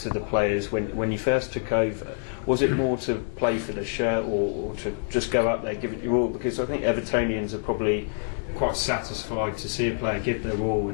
the players when you first took over? Was it more to play for the shirt or to just go up there, give it your all? Because I think Evertonians are probably quite satisfied to see a player give their all,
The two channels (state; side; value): silent; right; digital silence